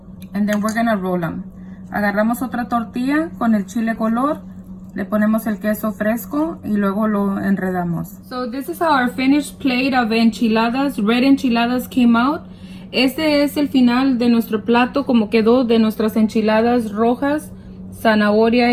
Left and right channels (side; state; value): both; identical; correlation 1.00